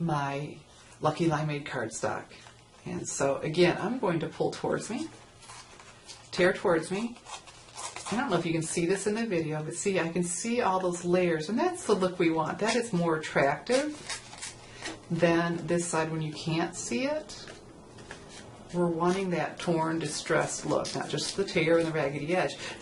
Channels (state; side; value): identical; both; correlation 1.00